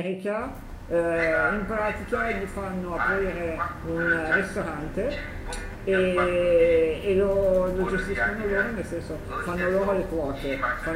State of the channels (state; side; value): identical; both; correlation 1.00